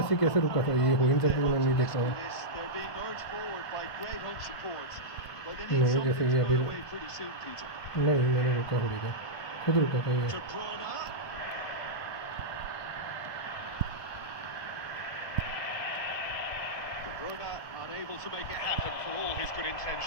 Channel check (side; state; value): right; late; 1.7 ms